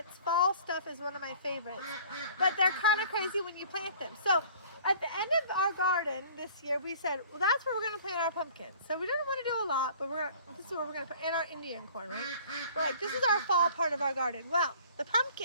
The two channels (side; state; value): both; inverted; correlation -0.50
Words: Fall stuff is one of my favorites, but they're kind of crazy when you plant them. So at the end of our garden this year, we said, well, that's where we're going to plant our pumpkins. So we didn't want to do a lot, but this is where we're going to put in our Indian corn, right? We're like, this is our fall part of our garden. Well, the